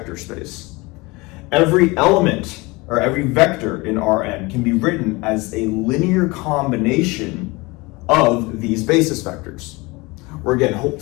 space, every element or every vector in Rn can be written as a linear combination of these basis vectors. Where again,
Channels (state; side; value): quieter; right; 24.1 dB